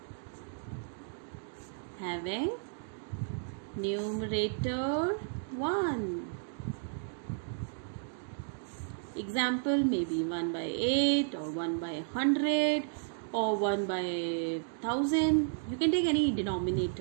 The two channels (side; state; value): left; silent; digital silence